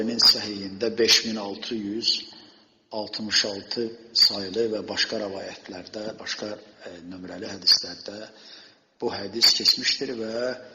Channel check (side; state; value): both; identical; correlation 1.00